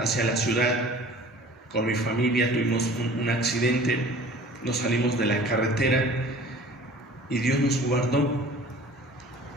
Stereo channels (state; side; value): normal; both; correlation 0.46